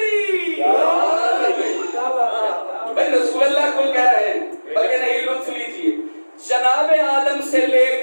بھائی رسول اللہ کو کہہ رہے ہیں، بلکہ نہیں لطف لیجیے، جناب آدم سے لے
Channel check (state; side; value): inverted; both; correlation -1.00